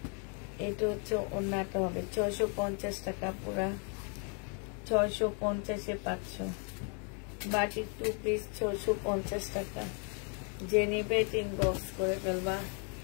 এটা হচ্ছে ওড়নাটা হবে। 650 টাকা পুরা, 650-এ পাচ্ছ। বাটিক 2 পিস 650 টাকা। যে নিবে ইনবক্স করে ফেলবা।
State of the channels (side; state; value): right; quieter; 39.6 dB